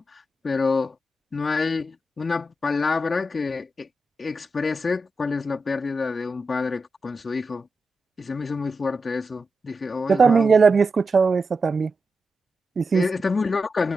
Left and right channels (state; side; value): normal; both; correlation 0.89